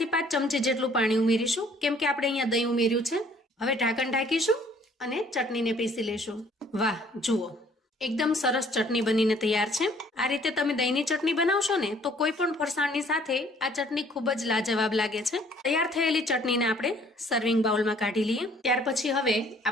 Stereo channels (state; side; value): normal; both; correlation 0.59